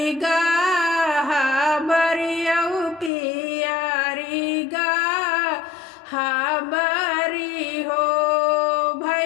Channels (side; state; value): right; drops out; at 3.1 s